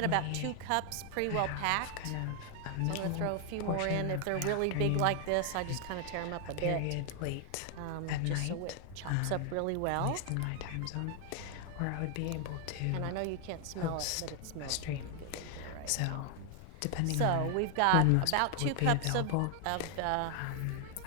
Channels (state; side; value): different; both; correlation 0.00